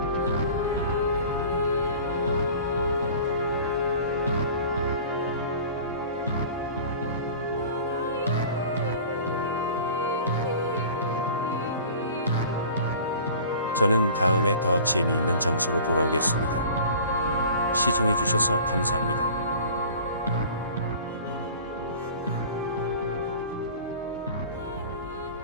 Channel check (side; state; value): both; inverted; correlation -0.43